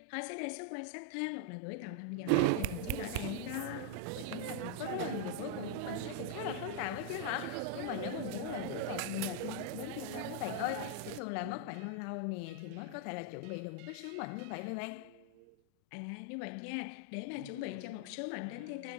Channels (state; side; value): different; both; correlation 0.00